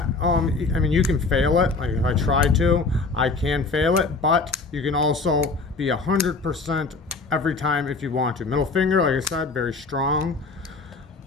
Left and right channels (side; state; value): right; quieter; 3.9 dB